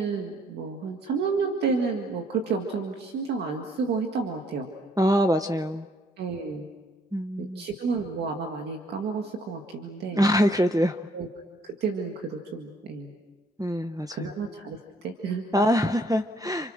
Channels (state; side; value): normal; both; correlation 0.65